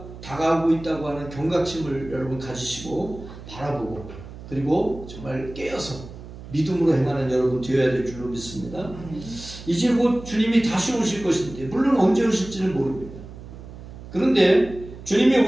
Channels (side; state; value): right; noise; hum, 15 dB below the sound